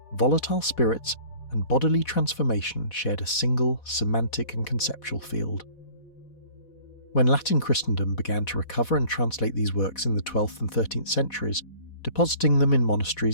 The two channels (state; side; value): late; right; 4.1 ms